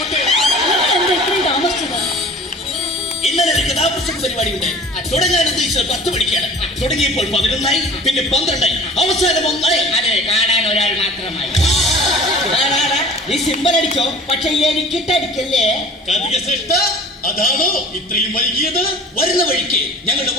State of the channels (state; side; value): normal; both; correlation 0.44